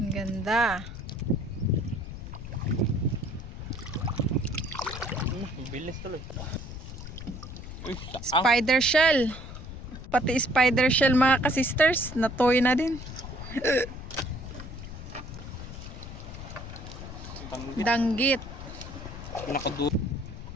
ganda. Bilis tuloy. Spider shell. Pati spider shell mga kasisters, natoy na din. Danggit. Pinakadulo.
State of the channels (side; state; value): left; noise; rumble, 10 dB below the sound